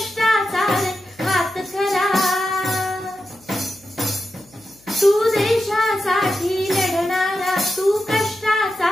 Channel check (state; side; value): noise; left; hum, 30 dB below the sound